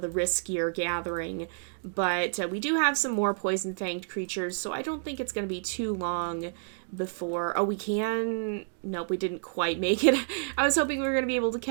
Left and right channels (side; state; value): left; silent; digital silence